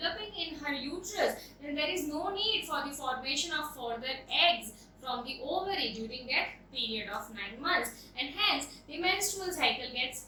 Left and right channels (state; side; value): identical; both; correlation 1.00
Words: in her uterus, then there is no need for the formation of further eggs from the ovary during that period of 9 months, and hence the menstrual cycle